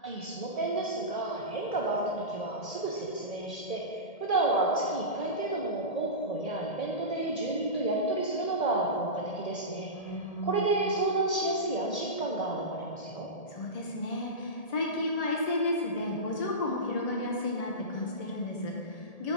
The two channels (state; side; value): late; right; 1.8 ms